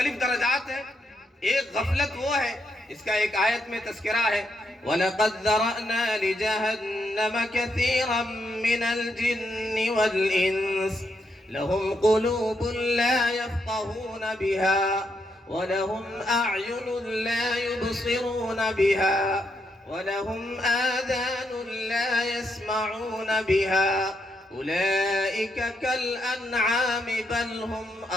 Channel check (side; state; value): both; normal; correlation 0.79